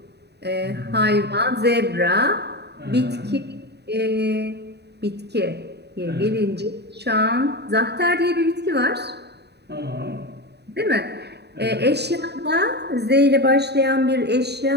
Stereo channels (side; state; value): left; late; 0.48 ms